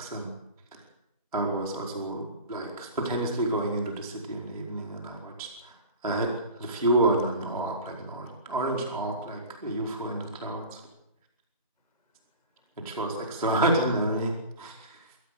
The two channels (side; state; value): both; inverted; correlation -0.35